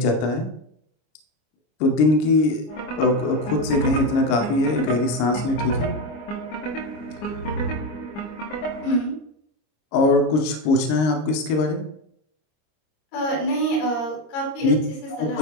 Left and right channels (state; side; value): late; right; 26 ms